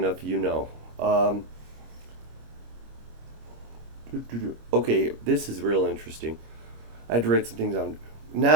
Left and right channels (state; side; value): late; left; 26 ms